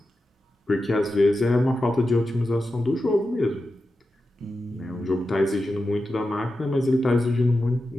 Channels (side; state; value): both; normal; correlation 0.91